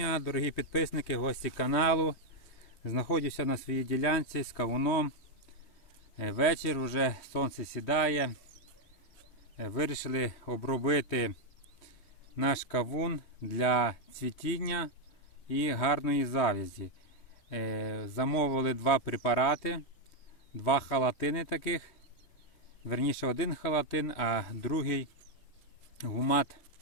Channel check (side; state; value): right; late; 3.3 ms